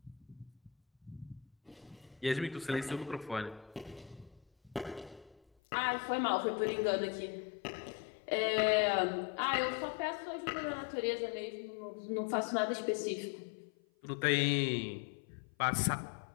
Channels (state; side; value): drops out; right; at 5.4 s